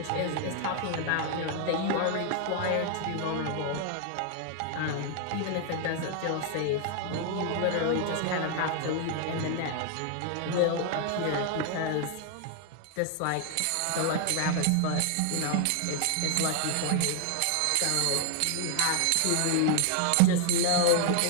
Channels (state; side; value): different; both; correlation 0.00